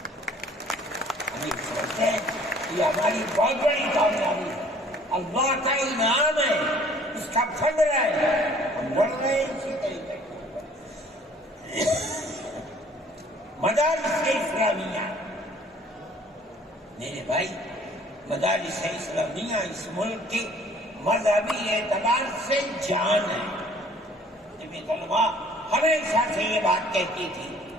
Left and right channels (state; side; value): normal; both; correlation 0.55